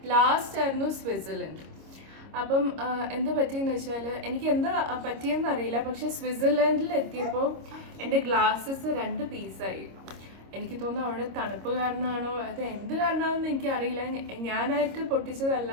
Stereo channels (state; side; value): late; left; 26 ms